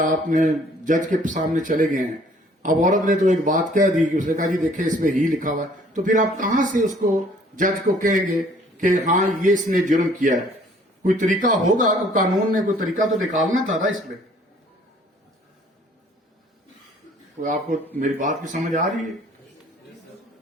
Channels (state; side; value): normal; both; correlation 0.58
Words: آپ نے جج کے سامنے چلے گئے ہیں، اب عورت نے تو ایک بات کہہ دی کہ اس نے کہا جی دیکھیں اس میں ہی لکھا ہوا ہے، تو پھر آپ کہاں سے اس کو جج کو کہیں گے کہ ہاں یہ اس نے جرم کیا ہے؟ کوئی طریقہ ہوگا، قانون نے کوئی طریقہ تو نکالنا تھا نا اس میں. کوئی آپ کو میری بات کی سمجھ آ رہی ہے؟